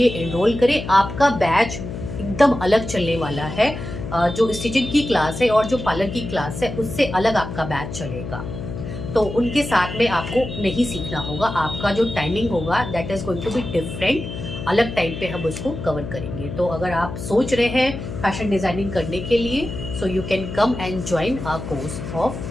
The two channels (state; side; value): noise; left; hum, 8 dB below the sound